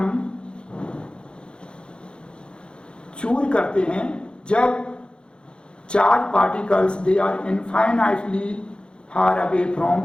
चूज करते हैं जब charge particles they are infinitely far away from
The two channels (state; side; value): late; right; 0.053 ms